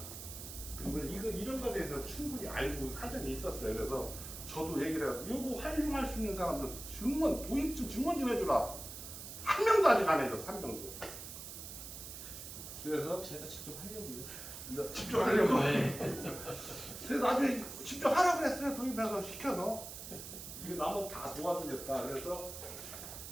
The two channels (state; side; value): noise; right; hiss, 10 dB below the sound